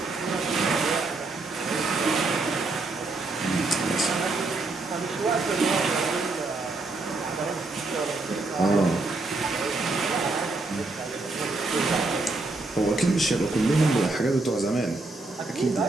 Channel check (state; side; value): quieter; left; 3.3 dB